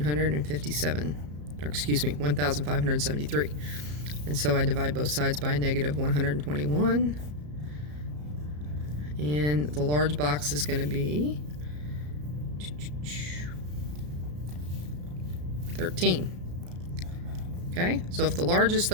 or excuse me, 1,573. And so I divide both sides by a -121. And the large box is going to be 13. Okay, so if the large is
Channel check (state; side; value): late; left; 34 ms